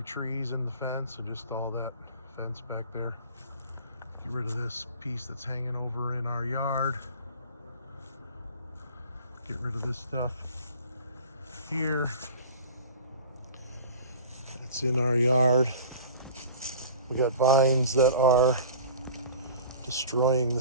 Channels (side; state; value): both; inverted; correlation -0.41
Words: trees in the fence and just all that fence back there. Get rid of this piece that's hanging over in our yard. Get rid of this stuff here. That's in our yard. We got vines that are destroying the